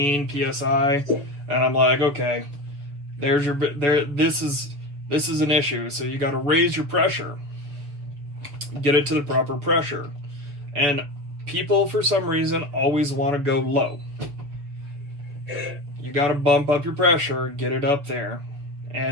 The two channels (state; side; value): late; left; 6.9 ms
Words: psi, and I'm like, okay, this is an issue. So you got to raise your pressure, get it to the proper pressure, and people for some reason always want to go low. You got to bump up your pressure, get it up there,